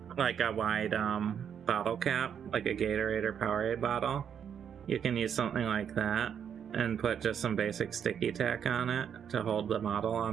like a wide bottle cap, like a Gatorade or Powerade bottle. You can use something like that and put just some basic sticky tack on it to hold the model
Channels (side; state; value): left; quieter; 8.2 dB